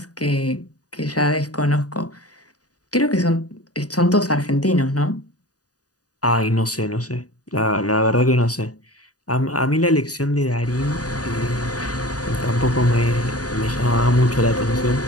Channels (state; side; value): late; right; 0.68 ms